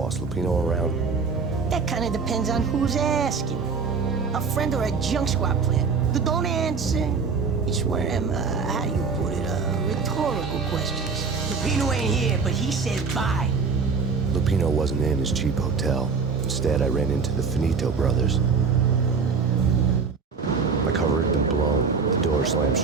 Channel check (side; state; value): left; quieter; 5.1 dB